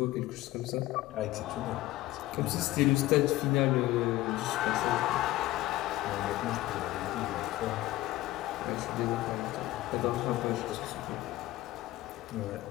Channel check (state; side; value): quieter; right; 16.8 dB